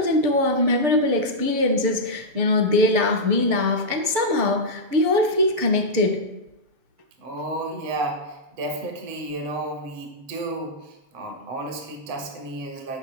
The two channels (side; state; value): left; late; 6.8 ms